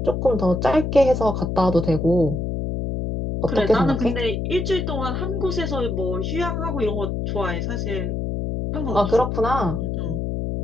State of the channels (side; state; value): left; noise; hum, 2 dB below the sound